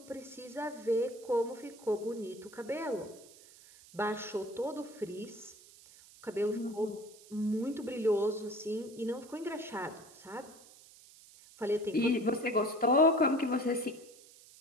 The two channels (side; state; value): right; noise; hiss, 22 dB below the sound